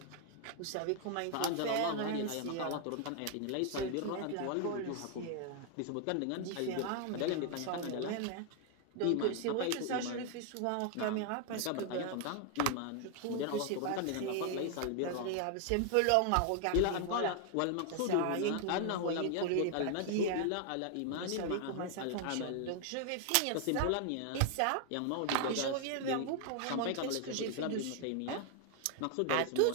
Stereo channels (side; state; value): both; different; correlation 0.00